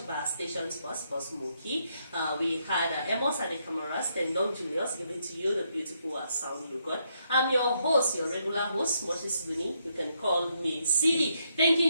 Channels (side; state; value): both; inverted; correlation -0.77